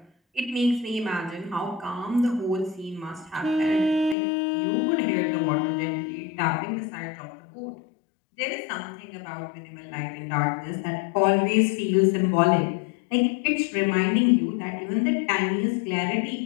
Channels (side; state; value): right; drops out; at 4.2 s